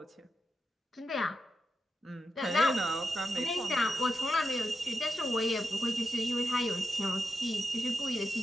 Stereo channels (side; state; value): both; normal; correlation 0.88